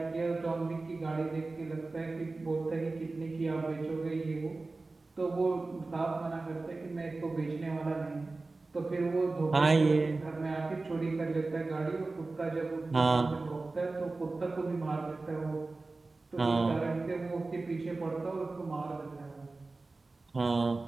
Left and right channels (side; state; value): left; quieter; 3.5 dB